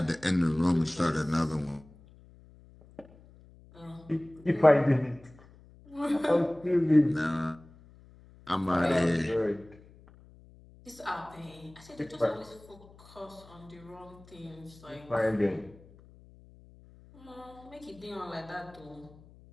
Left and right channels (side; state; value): left; noise; hum, 24 dB below the sound